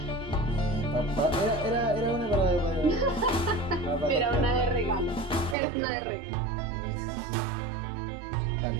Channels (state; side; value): drops out; left; at 5.6 s